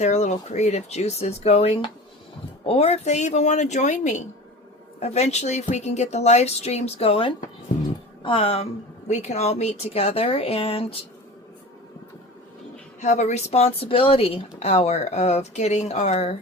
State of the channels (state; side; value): normal; both; correlation 0.35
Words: little creative juices going, or if they even want to join me, eventually if we can get the live streams going, we can all meet together and have a responsibility hour of getting our